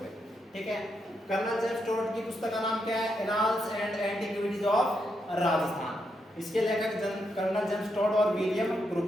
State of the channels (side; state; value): both; normal; correlation 0.81